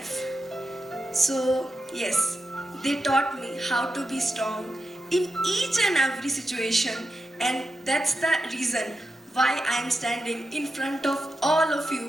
So yes, they taught me how to be strong in each and every situation, and that's the reason why I am standing in front of all of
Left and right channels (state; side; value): normal; both; correlation 0.89